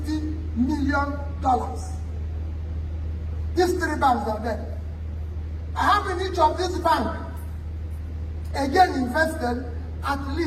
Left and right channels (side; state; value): both; identical; correlation 1.00